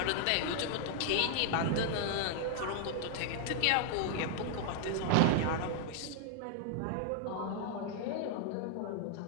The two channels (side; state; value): both; different; correlation 0.00